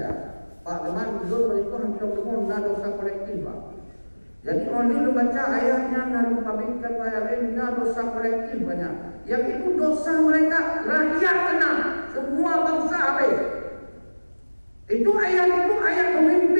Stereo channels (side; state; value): both; inverted; correlation -1.00